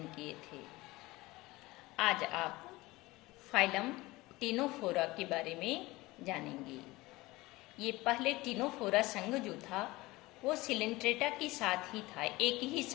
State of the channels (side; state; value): right; quieter; 20.4 dB